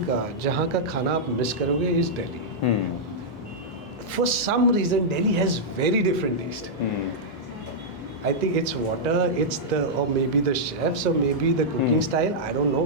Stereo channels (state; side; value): normal; both; correlation -0.08